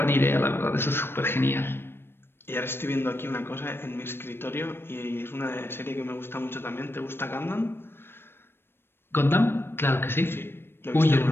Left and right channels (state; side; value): late; right; 0.11 ms